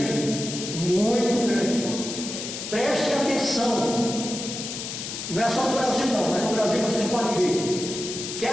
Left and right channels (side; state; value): left; noise; hiss, 7 dB below the sound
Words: Muito grande. Preste atenção. Não é só no Brasil não, mas no Brasil vocês podem ver.